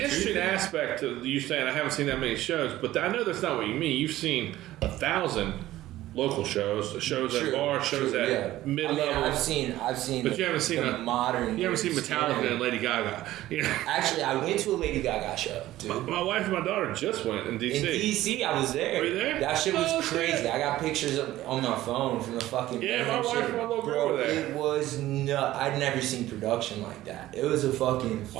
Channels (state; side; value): quieter; left; 15.2 dB